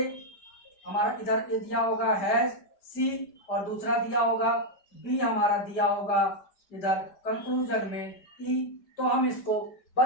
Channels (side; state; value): right; late; 5.1 ms